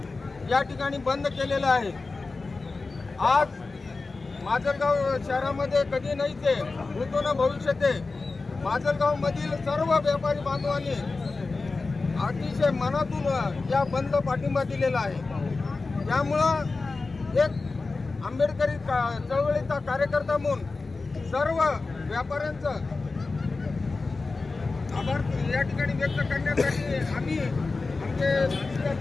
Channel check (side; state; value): right; quieter; 3.8 dB